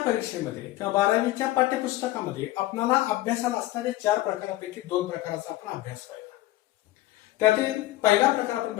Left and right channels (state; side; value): quieter; right; 16.6 dB